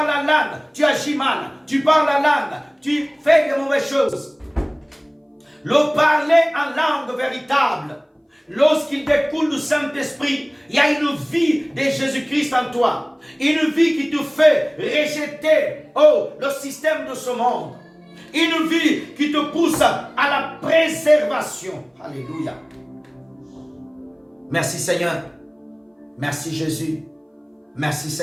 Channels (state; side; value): identical; both; correlation 1.00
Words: à langue, tu agis mal. Tu parles à langue, tu fais de mauvaises choses. Le parler en langue véritable, lorsqu'il découle du Saint-Esprit, il y a une vie de Jésus-Christ en toi. Une vie qui te fait rejeter le système de ce monde. Une vie qui te pousse à la préservation. Alléluia. Merci Seigneur. Merci Jésus. Merci